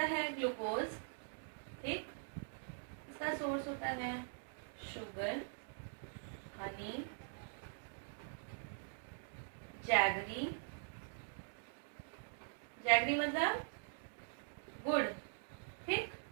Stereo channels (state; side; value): silent; left; digital silence